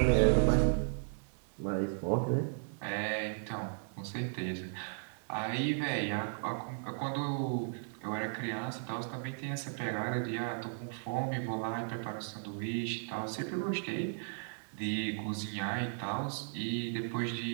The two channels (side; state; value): left; silent; digital silence